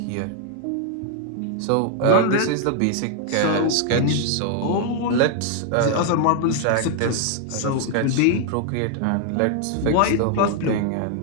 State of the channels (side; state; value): both; different; correlation 0.00